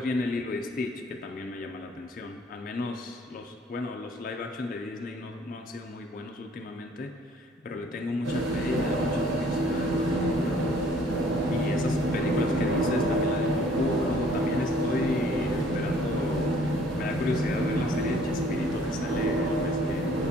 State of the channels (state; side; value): normal; both; correlation 0.58